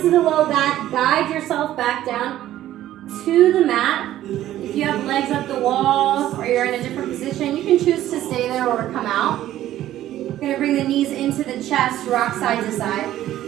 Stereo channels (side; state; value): left; quieter; 13.3 dB